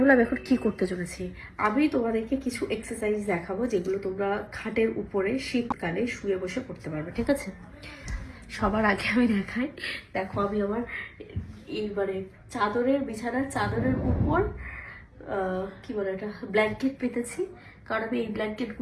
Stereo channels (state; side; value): identical; both; correlation 1.00